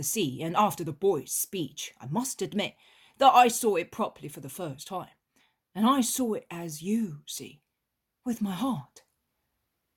sea, and after the boy's speech, I must admit that I saw it properly for the first time, and I saw it as you see, with my heart.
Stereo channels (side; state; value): both; identical; correlation 1.00